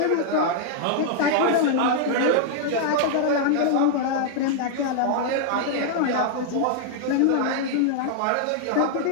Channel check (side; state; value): both; different; correlation -0.01